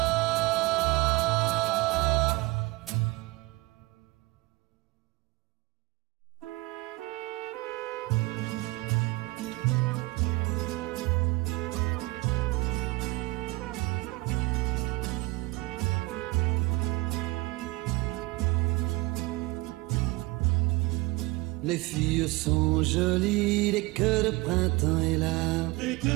Les filles sont jolies dès que le printemps est là.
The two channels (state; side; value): quieter; left; 22.5 dB